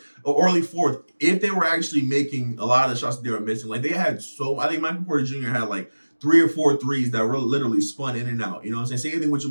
if they were actually making a lot of the shots that they were missing. Like they had I think Michael Porter Jr. had like 3 or 4 threes that were literally spun in and out. You know what I'm saying? Same thing with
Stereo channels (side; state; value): both; inverted; correlation -1.00